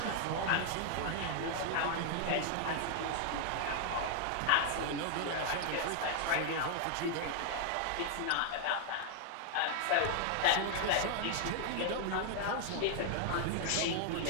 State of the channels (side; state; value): both; different; correlation 0.00